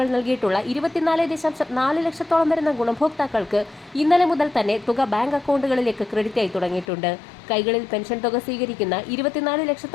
നൽകിയിട്ടുള്ള 24.4 ലക്ഷത്തോളം വരുന്ന ഗുണഭോക്താക്കൾക്ക് ഇന്നലെ മുതൽ തന്നെ തുക ബാങ്ക് അക്കൗണ്ടുകളിലേക്ക് ക്രെഡിറ്റ് ആയി തുടങ്ങിയിട്ടുണ്ട്. കൈകളിൽ പെൻഷൻ തുക സ്വീകരിക്കുന്ന 24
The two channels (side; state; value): right; drops out; at 6.9 s